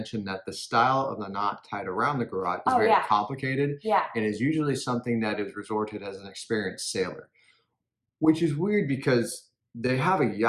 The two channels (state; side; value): identical; both; correlation 1.00